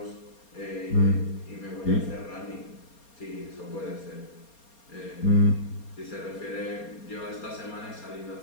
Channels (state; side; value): late; right; 4.3 ms